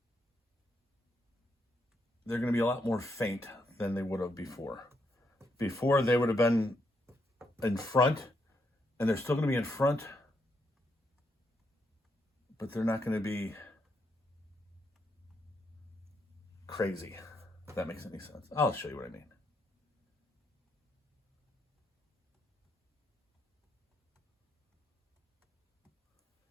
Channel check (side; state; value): both; normal; correlation 0.78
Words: They're going to be a lot more faint than they would have before. Before, they would have been in front, and they're still going to be in front, but they're not going to be crazy, if that makes any sense. I'll show you what I mean.